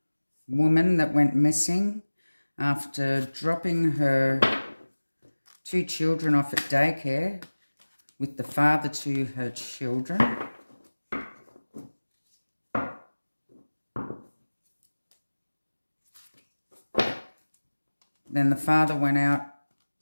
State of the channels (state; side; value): inverted; both; correlation -1.00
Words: woman that went missing after dropping her two children off at daycare with the father to her children. Then the father went out,